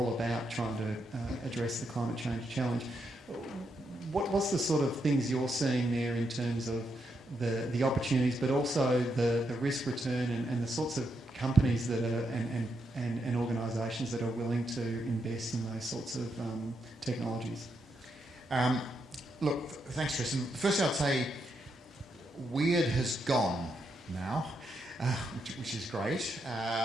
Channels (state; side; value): normal; both; correlation 0.81